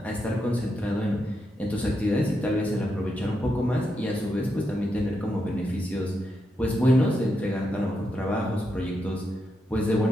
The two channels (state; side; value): normal; both; correlation 0.83